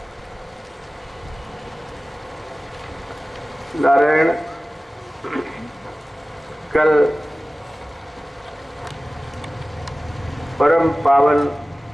नारायण, कल परम पावन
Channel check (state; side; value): normal; both; correlation 0.97